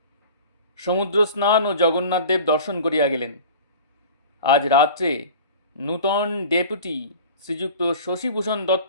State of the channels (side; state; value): both; inverted; correlation -0.40